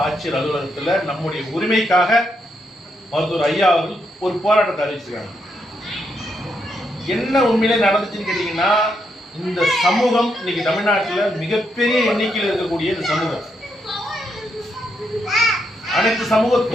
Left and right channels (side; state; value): both; normal; correlation 0.79